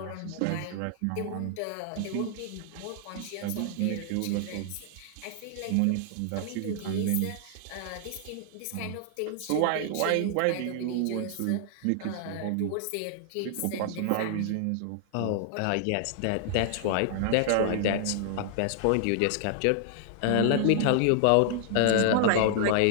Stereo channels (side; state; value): both; different; correlation -0.01